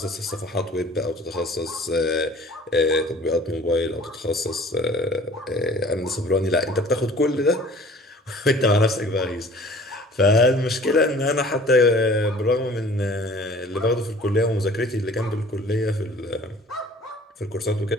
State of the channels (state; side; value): normal; both; correlation 0.48